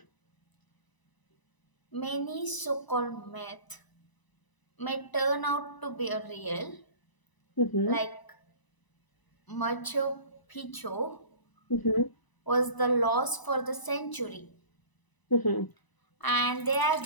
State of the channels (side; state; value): right; late; 1.0 ms